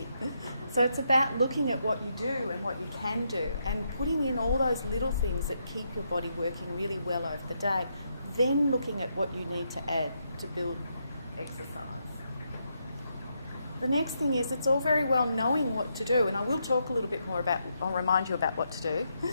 So it's about looking at what you do and what you can do and putting in all those little things that keep your body working really well over the day, then looking at what you need to add to build exercise. The next thing is it's all very well knowing what to do, and I will talk a little bit more about, I'll remind you about what to do,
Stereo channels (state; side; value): inverted; both; correlation -0.80